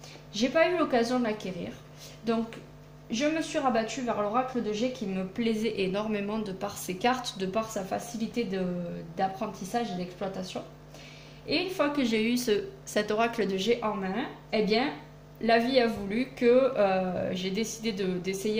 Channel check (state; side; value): identical; both; correlation 1.00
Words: j'ai pas eu l'occasion de l'acquérir. Donc je me suis rabattue vers l'oracle de G qui me plaisait énormément de par ses cartes, de par sa facilité d'apprentissage et d'exploitation. Et une fois que j'ai eu cet oracle de G en main, eh bien la vie a voulu que j'ai décidé